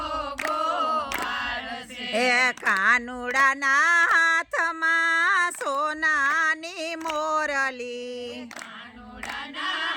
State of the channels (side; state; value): both; identical; correlation 1.00